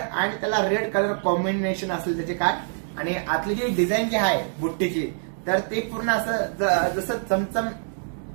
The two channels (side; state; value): left; silent; digital silence